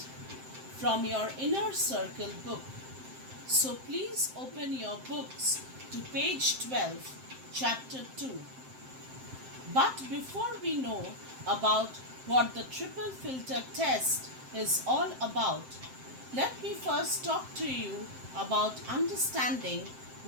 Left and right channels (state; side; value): late; left; 7.7 ms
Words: from your inner circle book. So please open your books to page 12, chapter 2. But before we know about what the triple filter test is all about, let me first talk to you about understanding